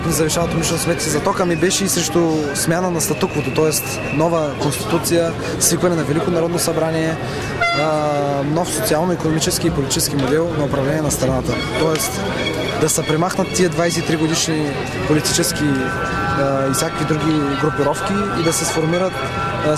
ни завишават умишлено сметки за тока, ми беше и срещу смяна на статуквото, т.е. нова конституция, свикване на Велико народно събрание, нов социално-икономически и политически модел на управление на страната. Тоест да се премахнат тия 23 годишни политически и всякакви други групировки и да се сформират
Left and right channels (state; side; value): identical; both; correlation 1.00